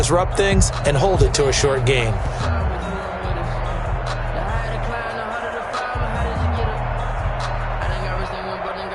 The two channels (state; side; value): identical; both; correlation 1.00